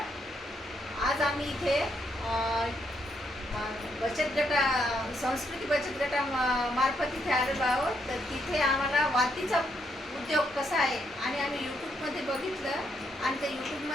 आज आम्ही इथे बचत गटा संस्कृती बचत गटा मार्फत इथे आलेलो आहोत. तर तिथे आम्हाला वातीचा उद्योग कसा आहे आणि आम्ही यूट्यूबमध्ये बघितलं आणि ते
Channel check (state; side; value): normal; both; correlation 0.76